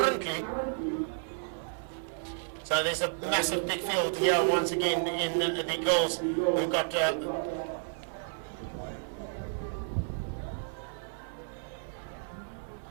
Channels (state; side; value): silent; left; 55 dB below the other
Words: So there's a massive big field here once again in the girls. We've got